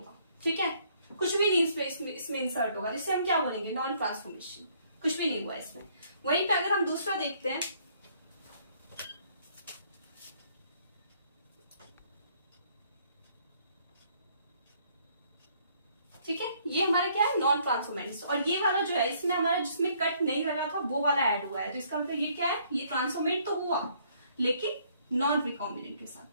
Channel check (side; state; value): both; inverted; correlation -0.65